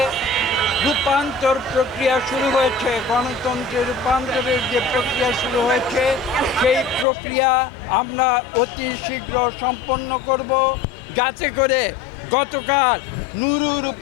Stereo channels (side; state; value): right; drops out; at 7.1 s